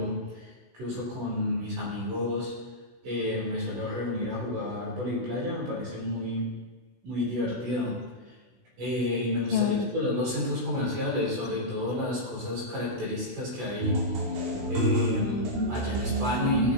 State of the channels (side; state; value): left; late; 16 ms